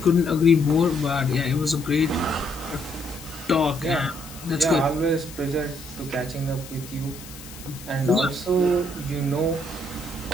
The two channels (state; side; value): noise; left; hiss, 16 dB below the sound